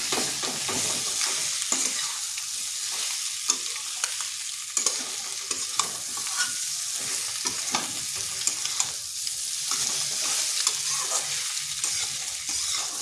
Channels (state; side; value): identical; both; correlation 1.00